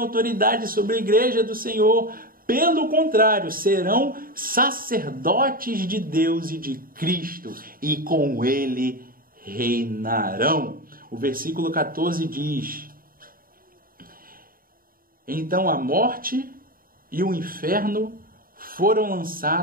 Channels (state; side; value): late; left; 0.42 ms